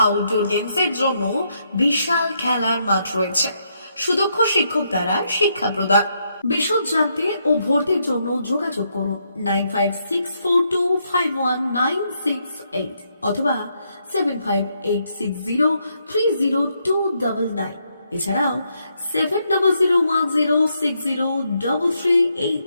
আউটডোর গেমসের জন্য বিশাল খেলার মাঠ রয়েছে। সুদক্ষ শিক্ষক দ্বারা শিক্ষা প্রদান। বিশদ জানতে ও ভর্তির জন্য যোগাযোগ করুন 9564251968 অথবা 7586030299। এছাড়াও 7001060338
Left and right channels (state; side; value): inverted; both; correlation -0.77